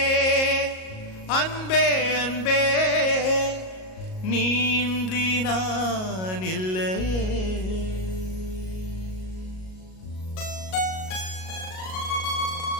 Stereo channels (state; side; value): late; right; 38 ms